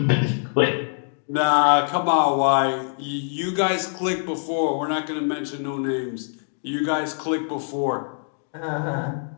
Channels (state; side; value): silent; right; digital silence